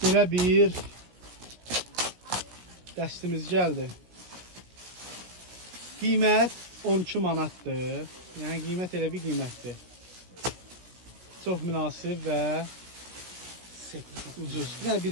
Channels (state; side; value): late; left; 17 ms